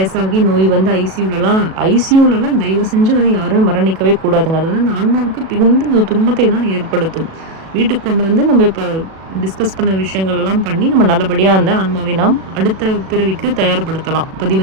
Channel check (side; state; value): left; late; 37 ms